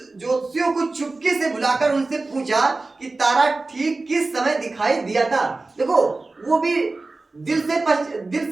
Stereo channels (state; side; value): quieter; left; 3.4 dB